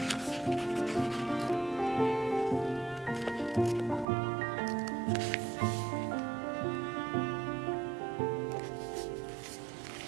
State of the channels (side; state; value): left; drops out; at 4.0 s